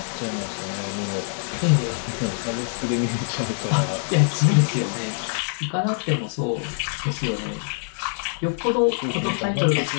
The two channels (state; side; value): silent; right; 60 dB below the other